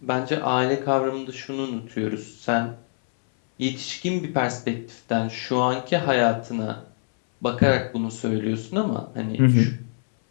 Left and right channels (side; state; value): right; silent; 62 dB below the other